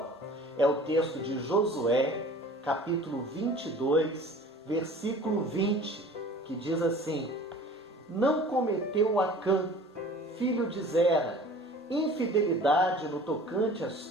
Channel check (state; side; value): normal; both; correlation 0.45